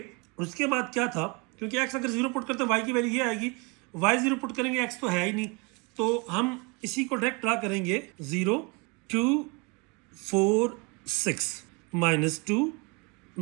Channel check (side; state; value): left; quieter; 29.7 dB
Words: उसके बाद क्या था, क्योंकि x अगर 0 पुट करते हैं y की वैल्यू ये आएगी, y 0 पुट करेंगे x तो है ही नहीं, तो हम इसी को डायरेक्ट ड्रा करेंगे 0 2 4 6 -2